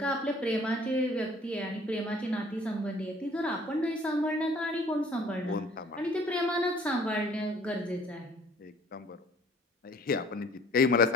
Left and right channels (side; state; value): both; normal; correlation 0.54